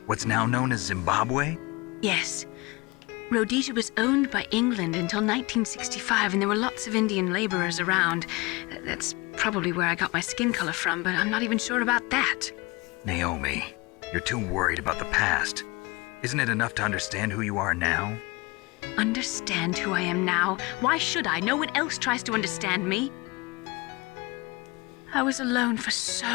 what's now known as Zimbabwe? Yes. Rhodesia was owned by England until 1965, and there were lots of Indian laborers around. That's probably where I got my skin color from, but I'm not even sure about that. Naomi, you're too worried about the past. Isn't it enough to understand who you are now? Understand who I am now? Why should I? No one else tries to understand me. I was alone for so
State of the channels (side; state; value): right; quieter; 24.6 dB